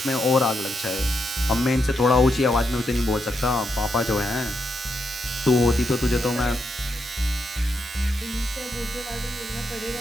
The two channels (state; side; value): normal; both; correlation 0.82